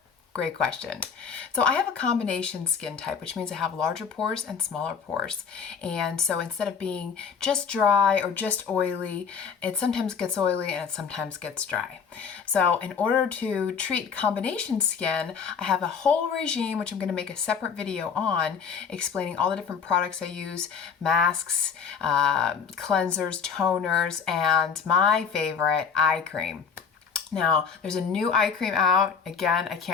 Great question. So I have a combination skin type, which means I have larger pores and smaller pores. And so instead of being just dry or just oily, it sometimes gets oily and it sometimes gets dry. So in order to treat combination skin, I have a whole regime, which I'm going to make a separate video on, explaining all the different products I use, masks, cleansers, toners, and my favorite, eye cream. Now, there's a new eye cream out. Again,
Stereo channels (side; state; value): right; quieter; 6.3 dB